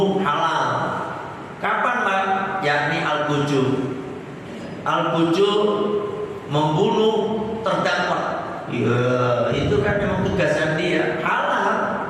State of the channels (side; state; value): both; identical; correlation 1.00